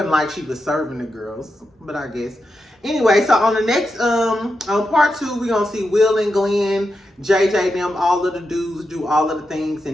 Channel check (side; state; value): both; normal; correlation 0.87